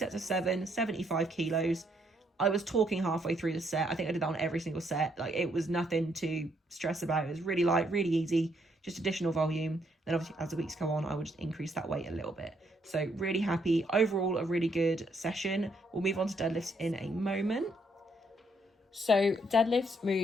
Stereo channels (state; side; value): normal; both; correlation 0.72